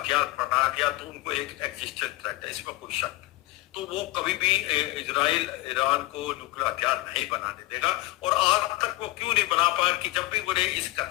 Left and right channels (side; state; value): right; quieter; 18.9 dB